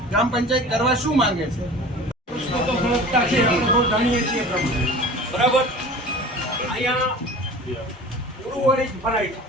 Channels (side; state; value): both; normal; correlation 0.39